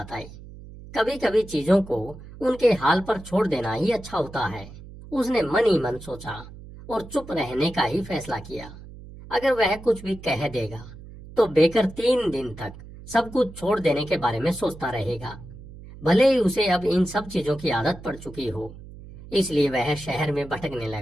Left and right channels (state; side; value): noise; right; hum, 16 dB below the sound